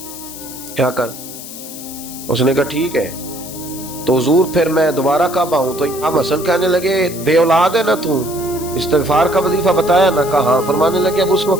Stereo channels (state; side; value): noise; left; hiss, 13 dB below the sound